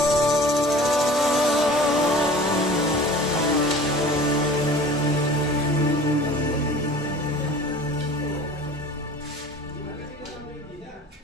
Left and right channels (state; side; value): normal; both; correlation 0.43